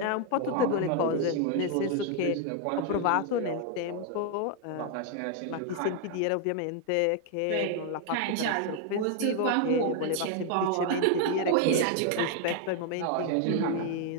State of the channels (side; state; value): both; different; correlation 0.00